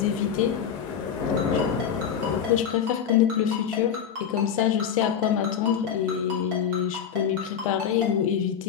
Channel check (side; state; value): right; quieter; 8.1 dB